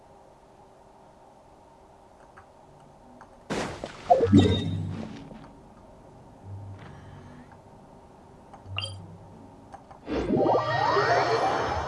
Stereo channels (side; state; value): both; identical; correlation 1.00